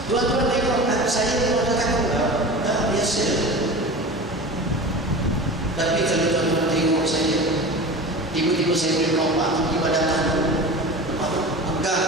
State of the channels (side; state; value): both; normal; correlation 0.33